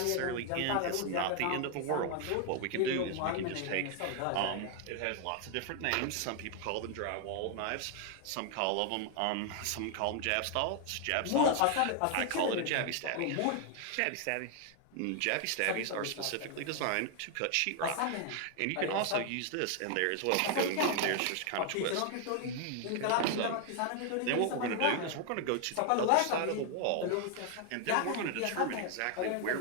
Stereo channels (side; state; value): both; different; correlation 0.00